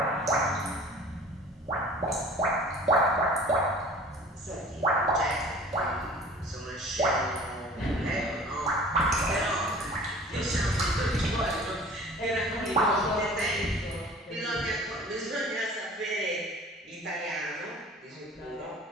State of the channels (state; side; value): normal; both; correlation 0.45